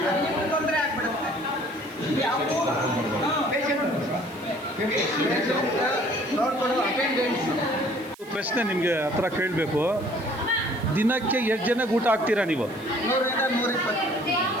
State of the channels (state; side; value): noise; right; hiss, 23 dB below the sound